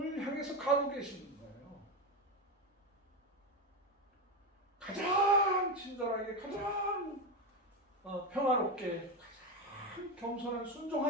향해서 가고 계시는 거예요. 가장 친절하게, 가장 평화롭게, 가장 겸손한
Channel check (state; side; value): normal; both; correlation 0.14